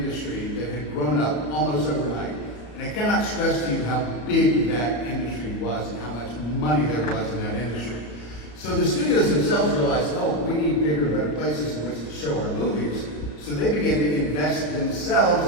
that had grown up almost overnight. And I cannot stress to you how big that industry was and how much money there was in that industry. So the studios themselves realized, we need bigger, better places in which to show our movies. So they began to invest themselves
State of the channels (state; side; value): late; right; 34 ms